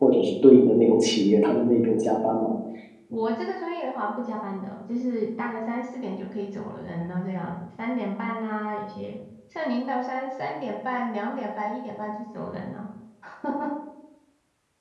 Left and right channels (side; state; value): both; identical; correlation 1.00